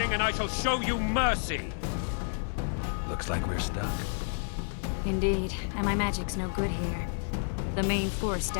and I shall show you mercy! Looks like we're stuck. Indeed, and my magic's no good here. The main force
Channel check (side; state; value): right; silent; digital silence